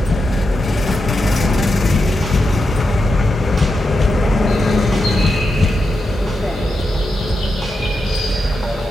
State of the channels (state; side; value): normal; both; correlation 0.87